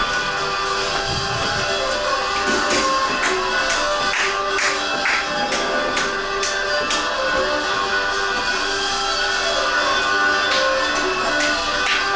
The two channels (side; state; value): both; identical; correlation 1.00